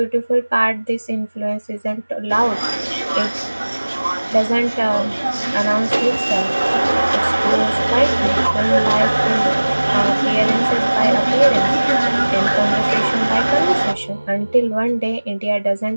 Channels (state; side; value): inverted; both; correlation -1.00